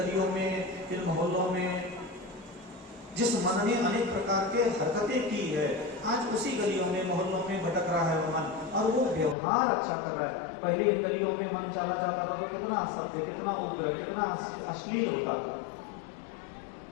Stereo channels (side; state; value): right; drops out; at 9.3 s